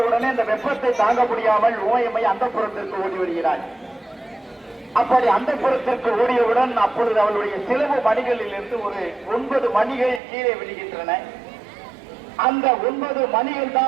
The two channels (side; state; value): left; drops out; at 10.2 s